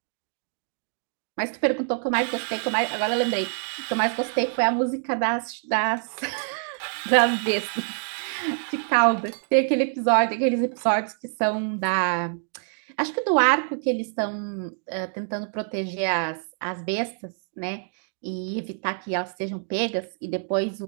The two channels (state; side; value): silent; left; 61 dB below the other